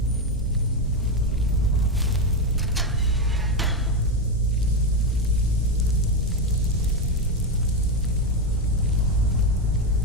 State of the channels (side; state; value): both; normal; correlation 0.10